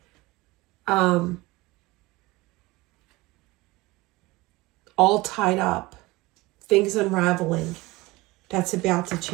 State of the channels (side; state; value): left; quieter; 21.3 dB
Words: All tied up. Things unraveling. That's about to